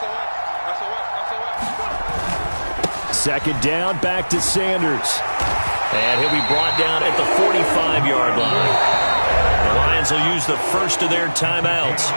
Second down, back to Sanders. And he'll be brought down at the 45-yard line. The Lions will use the first of their timeouts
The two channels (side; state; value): both; inverted; correlation -1.00